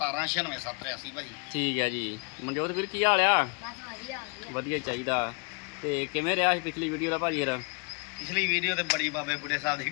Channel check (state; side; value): quieter; right; 33.6 dB